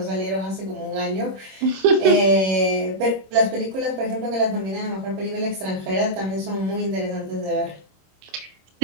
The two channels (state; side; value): late; left; 26 ms